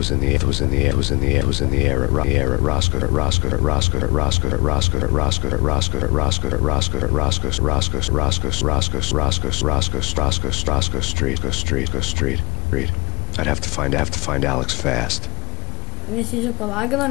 Street. I'd have to find Alex fast. Visi čia palagino,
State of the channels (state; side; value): quieter; right; 23.3 dB